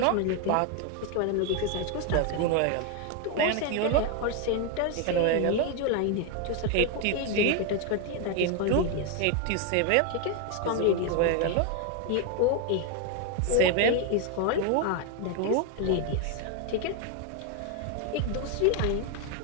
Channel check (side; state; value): both; different; correlation 0.01